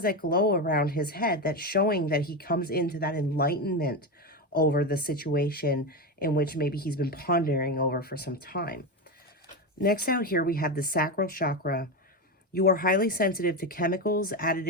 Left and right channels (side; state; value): both; normal; correlation 0.15